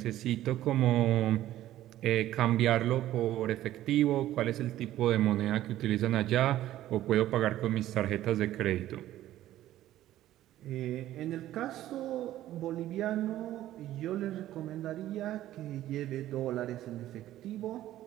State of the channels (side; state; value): left; quieter; 13.7 dB